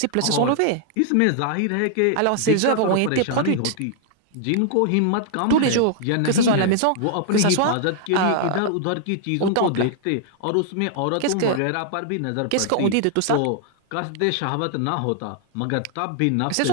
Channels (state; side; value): different; both; correlation -0.01